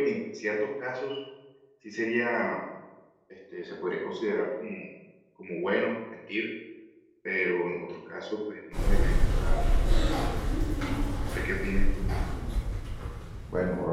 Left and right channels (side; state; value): both; identical; correlation 1.00